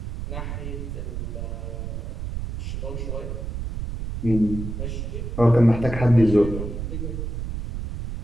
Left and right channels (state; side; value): noise; right; rumble, 5 dB below the sound